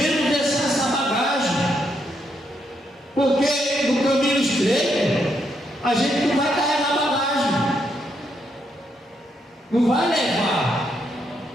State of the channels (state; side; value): normal; both; correlation 0.78